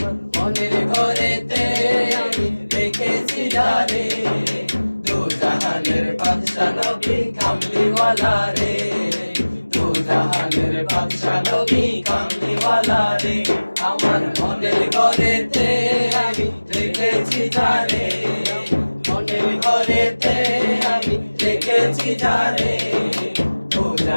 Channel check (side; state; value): both; inverted; correlation -1.00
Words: মনের ঘরেতে আমি দেখেছি যারে, দু জাহানের বাদশা নবী কামলিওয়ালা রে, দু জাহানের বাদশা নবী কামলিওয়ালা রে। আমার মনের ঘরেতে আমি দেখেছি যারে, মনের ঘরেতে আমি দেখেছি যারে, দু